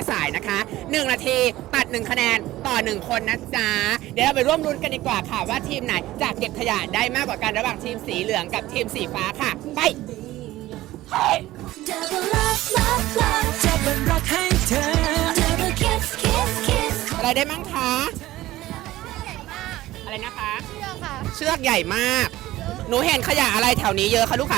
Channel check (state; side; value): quieter; left; 16.2 dB